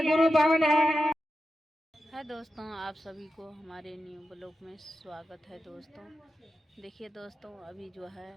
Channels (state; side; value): normal; both; correlation 0.90